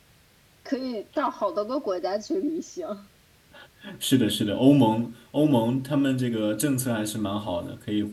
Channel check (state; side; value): identical; both; correlation 1.00